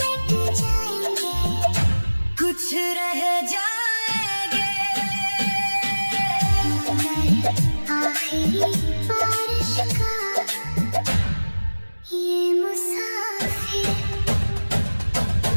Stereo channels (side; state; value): both; inverted; correlation -1.00